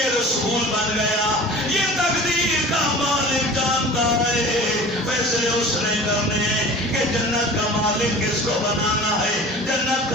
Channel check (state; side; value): normal; both; correlation 0.40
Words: رسول بن گیا یہ تقدیر کا مالک جانتا ہے فیصلے اس نے کرنے ہیں کہ جنت کا مالک کس کو بنانا ہے جنت